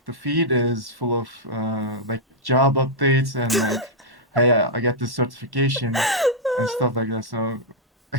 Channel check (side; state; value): both; normal; correlation -0.06